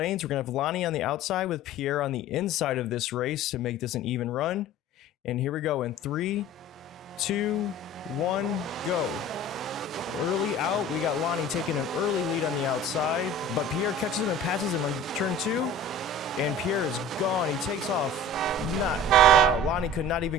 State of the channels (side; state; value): both; normal; correlation 0.41